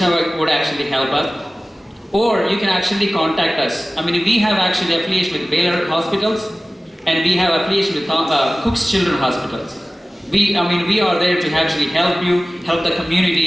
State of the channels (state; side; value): normal; both; correlation 0.97